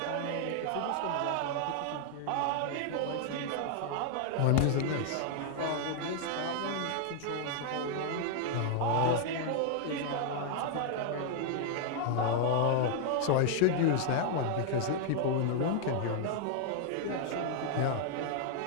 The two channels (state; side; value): different; both; correlation 0.00